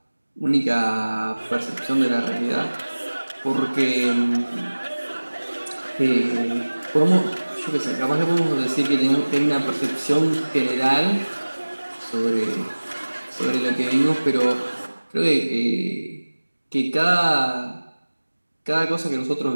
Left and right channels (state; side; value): inverted; both; correlation -1.00